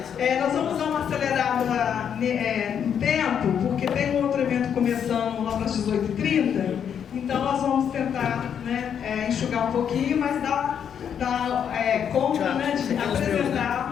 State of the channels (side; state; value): right; quieter; 8.2 dB